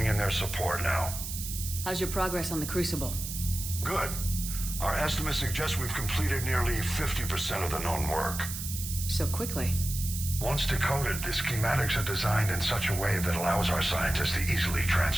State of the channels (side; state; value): right; noise; hiss, 6 dB below the sound